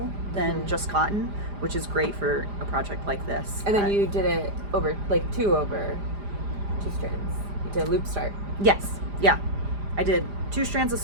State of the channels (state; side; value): late; left; 4.9 ms